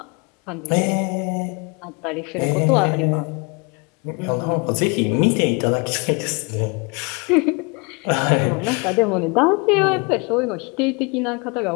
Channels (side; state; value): right; quieter; 30.6 dB